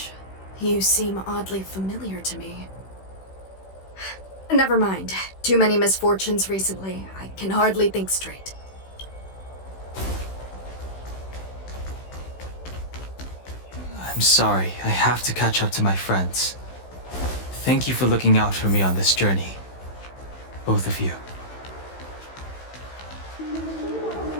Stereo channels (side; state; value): right; late; 16 ms